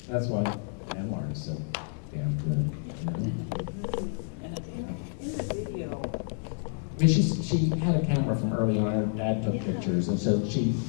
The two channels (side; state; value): right; silent; 58 dB below the other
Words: That's why memoir is so damn good. In the video, I mean, she had a camera from early on. Her dad took pictures, and so she